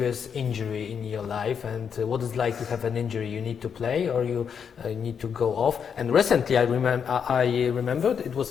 injury in your life, and what is like to have an injury? You need to play or you need to go off? And recently I remembered it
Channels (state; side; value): quieter; right; 7.1 dB